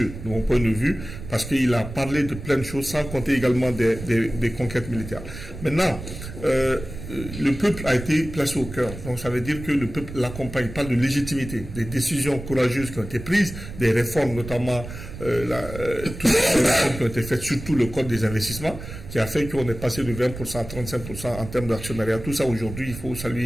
de mon point de vue, parce qu'il a parlé de plein de choses sans compter également des conquêtes militaires. Maintenant, le peuple a été placé au cœur. Donc ça veut dire que le peuple l'accompagne, parle de légitimité, des décisions courageuses qui ont été prises, des réformes, notamment toutes les réformes qui ont été faites, surtout le code des investissements, qui a fait qu'on est passé de 20% à 35% en termes d'actionnariat. Tout ça aujourd'hui, il faut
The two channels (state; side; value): noise; right; rumble, 11 dB below the sound